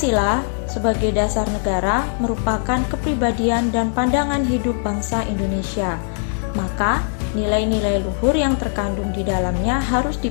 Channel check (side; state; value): right; silent; 65 dB below the other